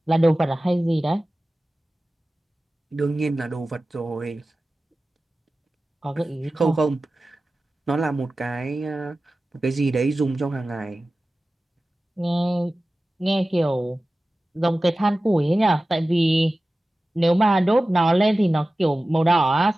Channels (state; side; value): normal; both; correlation 0.96